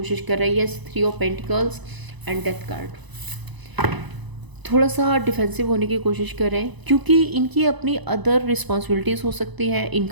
कर रही है। Yes, 3 of pentacles and death card. थोड़ा सा डिफेंसिव होने की कोशिश कर रहे हैं क्योंकि इनकी अपनी अदर रिस्पॉन्सिबिलिटीज़ हो सकती हैं।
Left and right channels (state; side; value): late; left; 1.0 ms